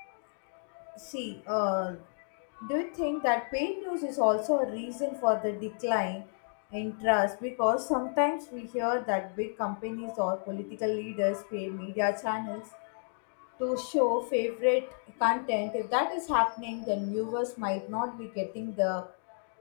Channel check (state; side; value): silent; right; digital silence